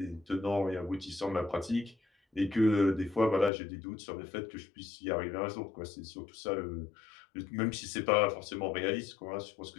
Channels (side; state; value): right; drops out; at 3.5 s